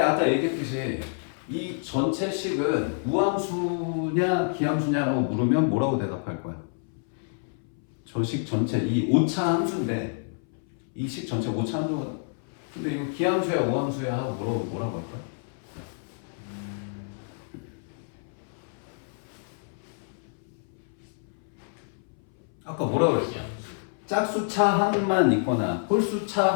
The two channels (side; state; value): right; silent; 59 dB below the other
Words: 아까 얘기했듯이 이 전체 식은 무함수냐 기함수냐라고 물으면 뭐라고 대답할 거야? 저 식 전체 이 오차 함수인데 이 식 전체 오차 함수거든. 근데 이거 기함수야 무함수야 하고 뭐라고 할 거야? 아까 뭐라고 그랬어? 짝수차항만 있거나